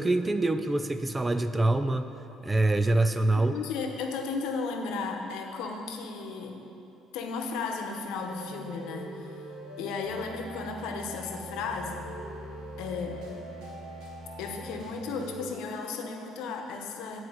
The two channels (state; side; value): normal; both; correlation 0.80